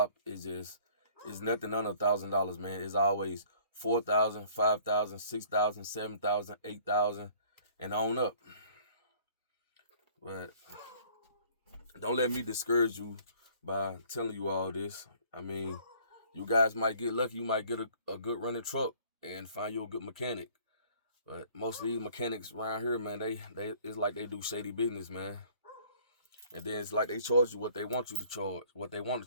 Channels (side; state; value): both; inverted; correlation -0.55